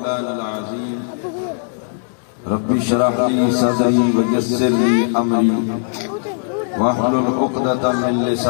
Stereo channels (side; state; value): right; silent; digital silence